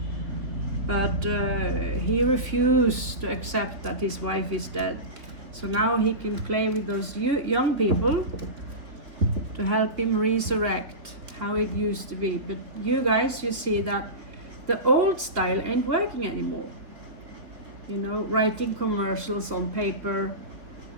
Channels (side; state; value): left; late; 3.7 ms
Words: But he refused to accept that his wife is dead. So now he can play with those young people to help him resurrect how it used to be. But you guys, you see that the old style ain't working anymore. You know, writing commercials on paper.